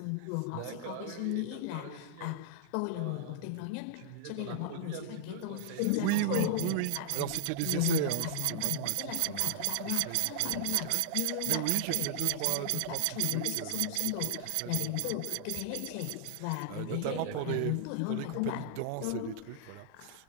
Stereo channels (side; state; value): both; different; correlation -0.01